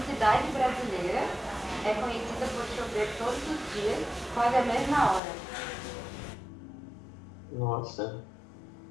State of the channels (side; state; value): right; drops out; at 5.2 s